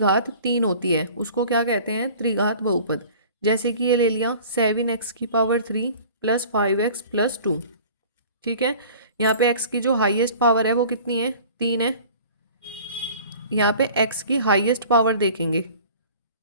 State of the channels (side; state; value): both; inverted; correlation -0.46